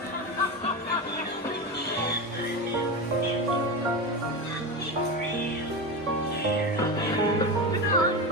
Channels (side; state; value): both; normal; correlation 0.20